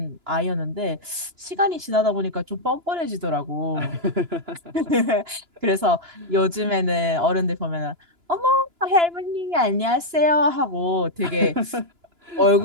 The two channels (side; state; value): left; late; 2.9 ms